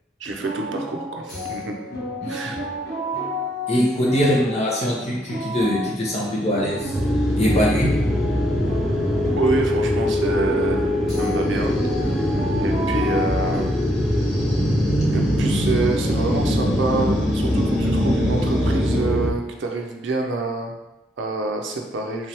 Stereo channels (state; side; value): normal; both; correlation 0.73